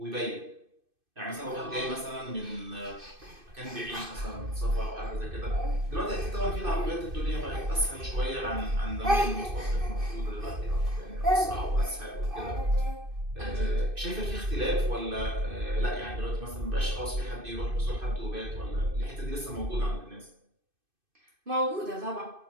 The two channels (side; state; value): left; late; 2.6 ms